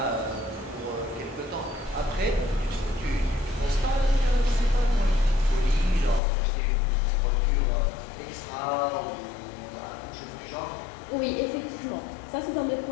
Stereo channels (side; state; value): right; drops out; at 6.2 s